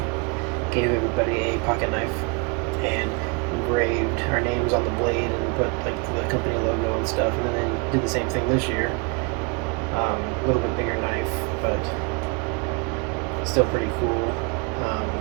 gave everybody a pocket knife and engraved our names on the blade and put like the company logo and stuff, and then they did the same thing this year. A little bit bigger knife, but still pretty cool.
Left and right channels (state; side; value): quieter; left; 31.4 dB